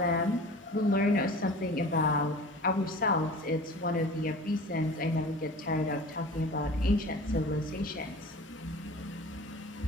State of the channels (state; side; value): normal; both; correlation 0.40